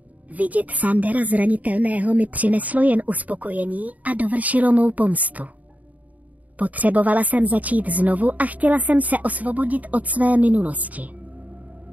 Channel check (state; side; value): late; left; 0.073 ms